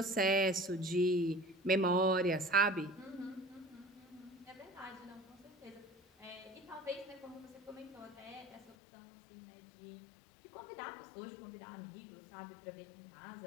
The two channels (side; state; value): right; drops out; at 8.8 s